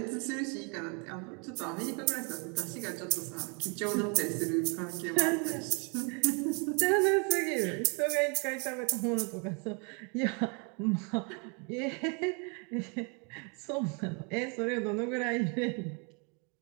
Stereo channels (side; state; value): left; quieter; 35.0 dB